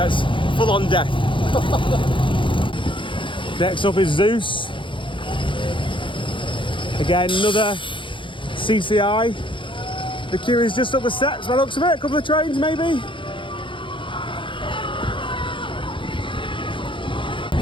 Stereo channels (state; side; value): late; right; 0.24 ms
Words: full on death. Next up is Zeus. Again, another CCI. The queue is just up the steps by the looks of it. A couple of trains maybe.